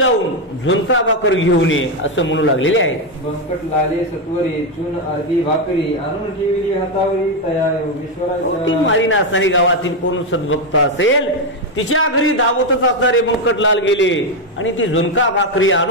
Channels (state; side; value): normal; both; correlation 0.06